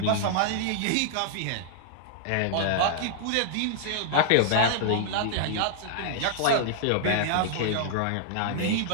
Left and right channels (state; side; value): different; both; correlation -0.01